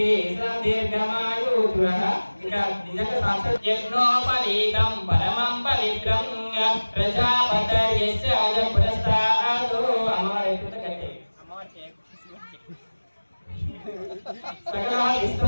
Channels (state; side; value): inverted; both; correlation -1.00